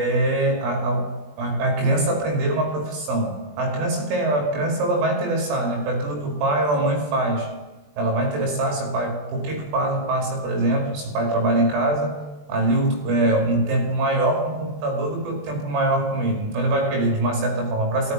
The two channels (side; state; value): left; late; 20 ms